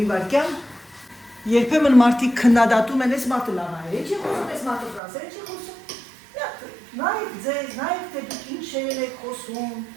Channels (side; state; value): left; drops out; at 5.0 s